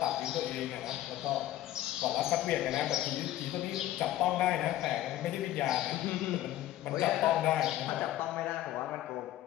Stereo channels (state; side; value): quieter; right; 13.8 dB